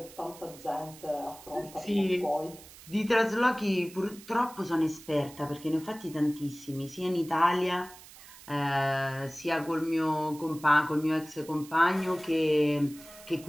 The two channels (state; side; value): noise; right; hiss, 19 dB below the sound